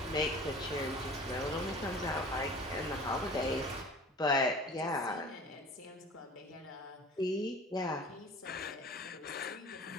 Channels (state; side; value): normal; both; correlation 0.43